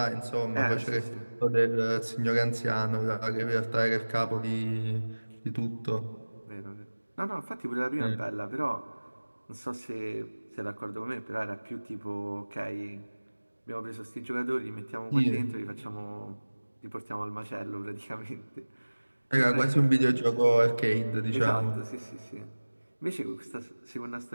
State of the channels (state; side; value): inverted; both; correlation -1.00